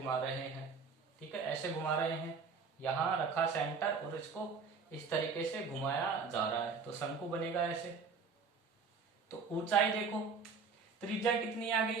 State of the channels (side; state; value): left; quieter; 5.0 dB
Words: रहे हैं, ठीक है, ऐसे घुमा रहे हैं, यहां रखा सेंटर और इसको इस तरीके से घुमाया जा रहा है, तो शंकु बनेगा ऐसे। तो ऊंचाई देखो, त्रिज्या कितनी आ